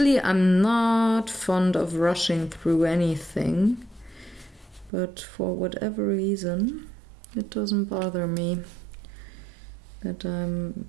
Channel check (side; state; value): left; drops out; at 4.9 s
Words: I'm not fond of rushing through anything, but for whatever reason, it doesn't bother me that I'm